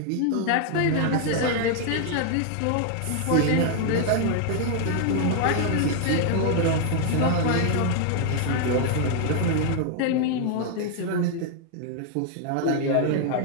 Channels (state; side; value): different; both; correlation 0.00